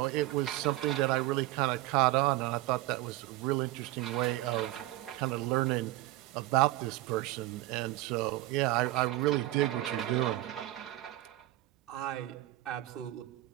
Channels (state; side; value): quieter; left; 16.7 dB